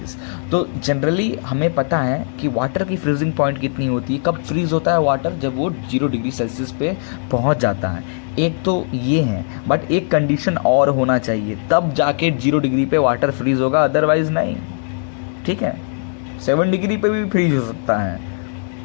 तो जनरली हमें पता है कि वाटर की फ्रीजिंग पॉइंट कितनी होती है, कब फ्रीज होता है वाटर, जब वो 0 डिग्री सेल्सियस पे पहुंच जाता है। एक तो ये है, बट एक कंडीशन और होना चाहिए, तब जाके 0 डिग्री पे वाटर फ्रीज होगा, अदरवाइज नहीं। ठीक है, 7 डिग्री पे भी फ्रीज हो सकता है,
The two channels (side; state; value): right; silent; 66 dB below the other